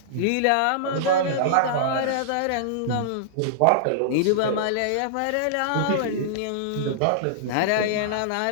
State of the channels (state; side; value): different; both; correlation -0.02